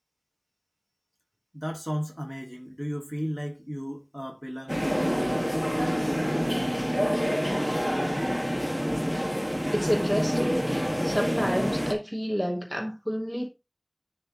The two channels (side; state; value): both; identical; correlation 1.00